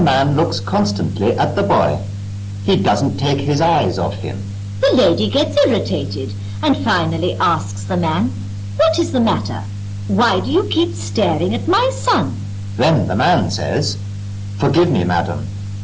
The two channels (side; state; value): both; identical; correlation 1.00